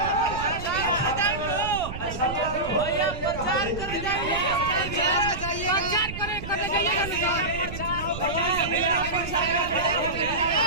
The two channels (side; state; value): right; noise; rumble, 9 dB below the sound